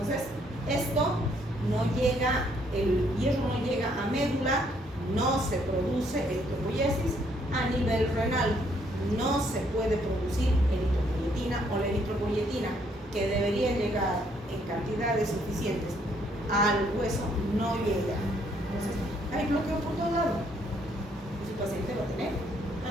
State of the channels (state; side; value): normal; both; correlation 0.68